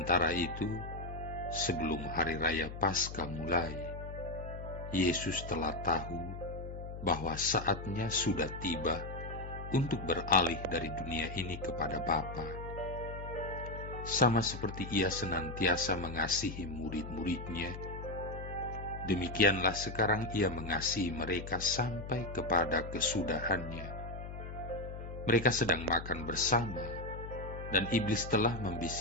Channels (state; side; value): noise; left; hum, 9 dB below the sound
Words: itu, sebelum hari raya Paskah mulai, Yesus telah tahu bahwa saatnya sudah tiba untuk beralih dari dunia ini kepada Bapa. Sama seperti Ia senantiasa mengasihi murid-muridnya, demikianlah sekarang Ia mengasihi mereka sampai kepada kesudahannya. Mereka sedang makan bersama, dan iblis telah